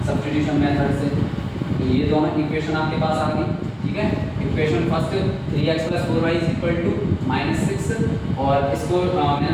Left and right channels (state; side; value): identical; both; correlation 1.00